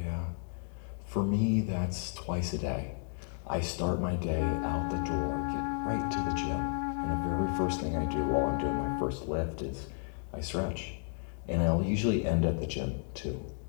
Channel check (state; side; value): silent; right; 56 dB below the other